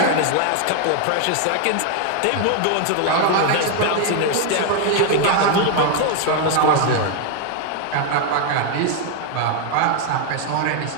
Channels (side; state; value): both; different; correlation 0.00